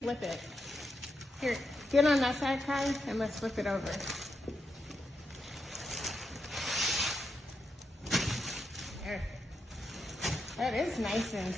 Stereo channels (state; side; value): normal; both; correlation 0.84